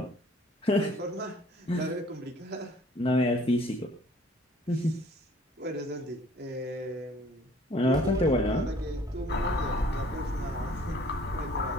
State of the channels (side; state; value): both; normal; correlation 0.56